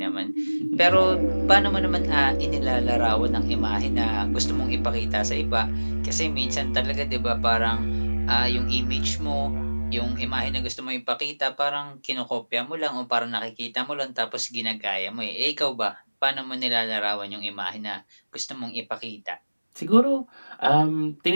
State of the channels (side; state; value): both; inverted; correlation -1.00